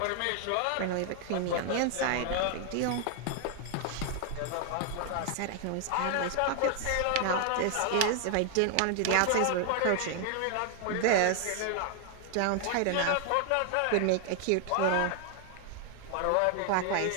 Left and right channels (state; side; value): different; both; correlation 0.00